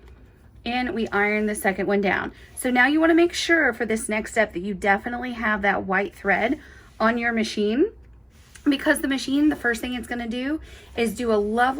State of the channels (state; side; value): identical; both; correlation 1.00